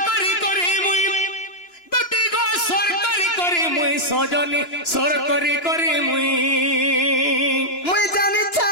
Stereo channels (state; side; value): late; right; 2.9 ms